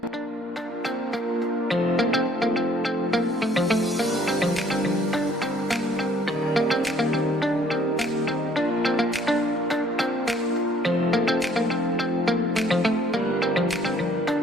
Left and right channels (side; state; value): both; normal; correlation 0.60